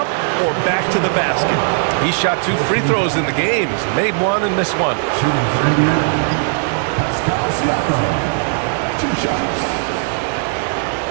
or back to the basket. He shot 2 free throws in the game. He's made one and missed one. Shooting for Indiana, Siakam. 2 shots.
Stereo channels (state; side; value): silent; left; 67 dB below the other